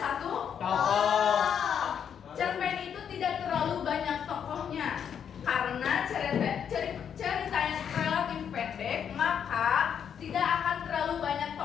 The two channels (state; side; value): quieter; right; 8.1 dB